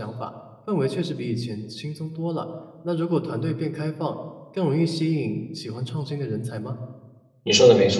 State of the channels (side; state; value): both; identical; correlation 1.00